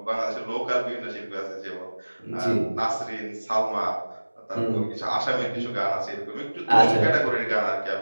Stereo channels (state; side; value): inverted; both; correlation -1.00